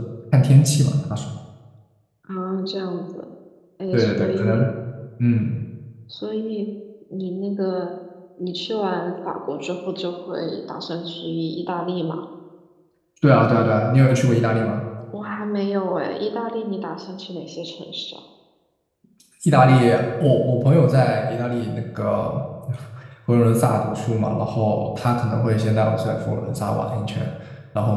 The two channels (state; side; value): identical; both; correlation 1.00